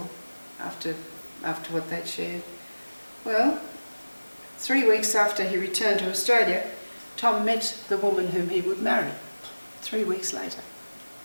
after what they'd shared. Well, 3 weeks after he returned to Australia, Tom met the woman whom he would marry, 3 weeks later.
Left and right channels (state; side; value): inverted; both; correlation -1.00